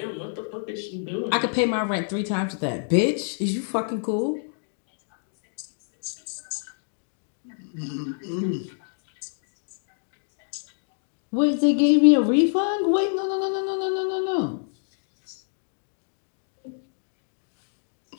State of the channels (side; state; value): right; silent; digital silence